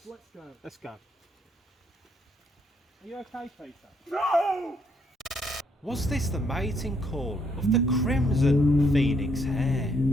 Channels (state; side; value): normal; both; correlation 0.71